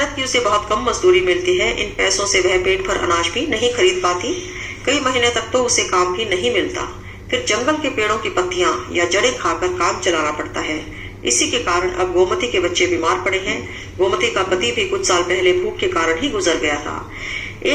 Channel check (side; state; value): both; identical; correlation 1.00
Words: की उसे बहुत कम मजदूरी मिलती है। इन पैसों से वह पेट भर अनाज भी नहीं खरीद पाती। कई महीने तक तो उसे काम भी नहीं मिलता। फिर जंगल के पेड़ों की पत्तियां या जड़ें खाकर काम चलाना पड़ता है। इसी के कारण अब गोमती के बच्चे बीमार पड़े हैं। गोमती का पति भी कुछ साल पहले भूख के कारण ही गुजर गया था।